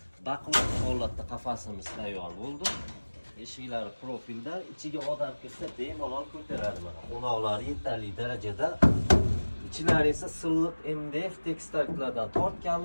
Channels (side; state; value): both; inverted; correlation -1.00